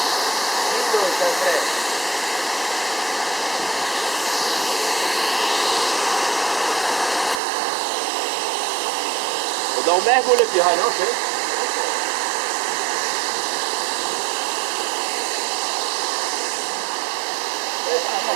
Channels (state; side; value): drops out; left; at 7.4 s